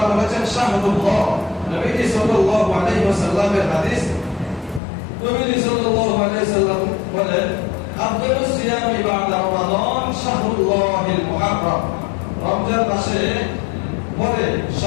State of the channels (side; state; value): right; drops out; at 4.8 s